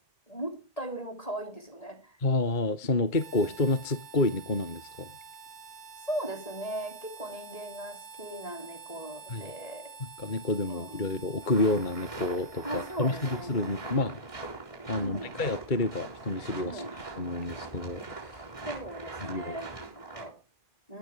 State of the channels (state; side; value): late; right; 2.2 ms